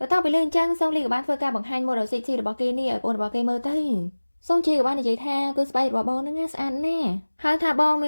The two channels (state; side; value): inverted; both; correlation -1.00